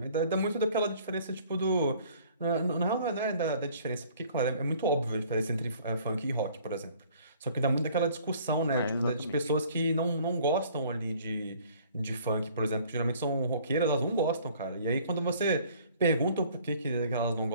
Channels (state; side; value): inverted; both; correlation -0.55